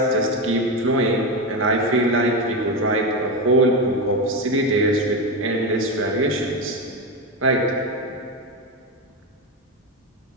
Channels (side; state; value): both; normal; correlation 0.15